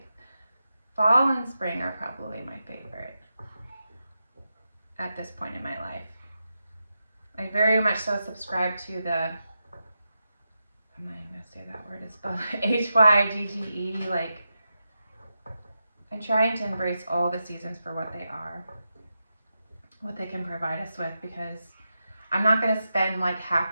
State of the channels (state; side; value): inverted; both; correlation -0.89